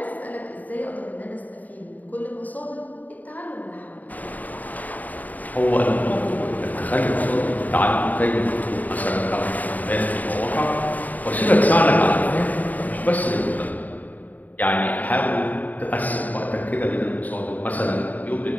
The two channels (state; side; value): late; right; 0.078 ms